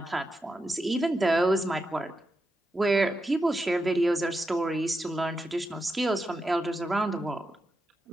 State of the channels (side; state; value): both; normal; correlation 0.87